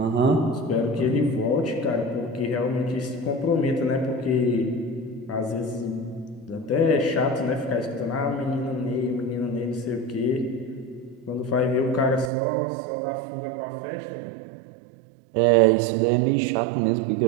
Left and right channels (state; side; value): drops out; left; at 12.3 s